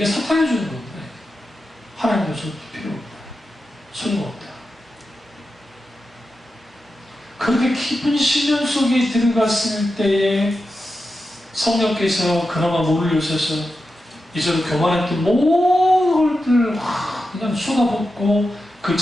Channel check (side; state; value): both; normal; correlation 0.90